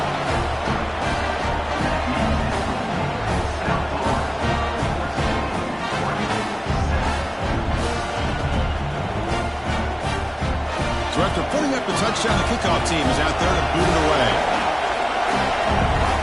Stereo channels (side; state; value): both; identical; correlation 1.00